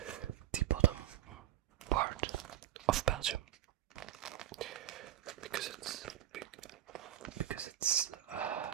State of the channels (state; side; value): quieter; left; 12.8 dB